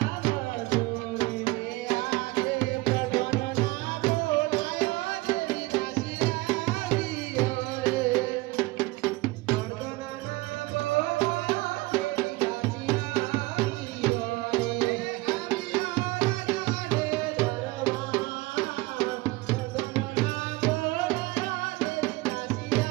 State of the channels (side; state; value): left; quieter; 21.4 dB